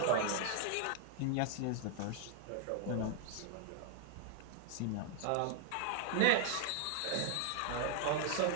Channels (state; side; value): different; both; correlation 0.00